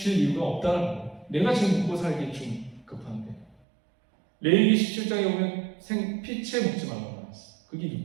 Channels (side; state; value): left; drops out; at 3.6 s